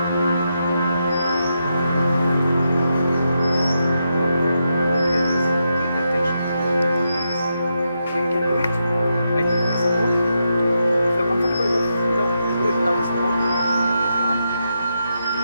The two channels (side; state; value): both; inverted; correlation -0.83